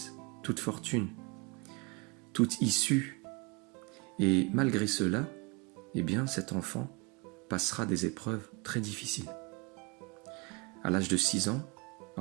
toute fortune, toute issue. Et malgré cela, eh bien, cet enfant passera des épreuves très difficiles. À l'âge de 6 ans,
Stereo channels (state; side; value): quieter; left; 27.6 dB